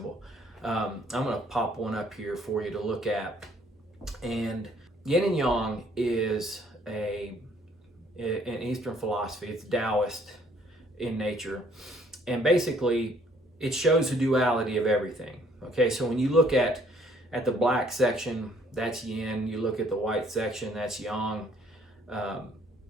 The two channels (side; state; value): both; normal; correlation 0.63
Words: I'm going to pop one up here for you to look at. And yin and yang is an Eastern philosophy. It's Taoist in nature. And basically, it shows the duality of everything. Okay, so when you look at the black section, that's yin. You look at the white section, that's yang.